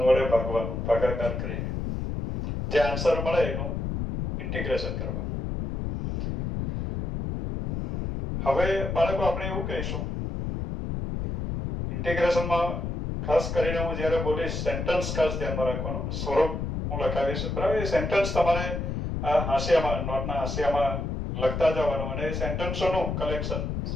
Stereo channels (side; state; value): left; noise; rumble, 3 dB below the sound